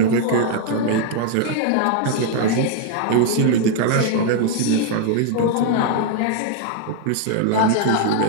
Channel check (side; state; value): both; different; correlation 0.00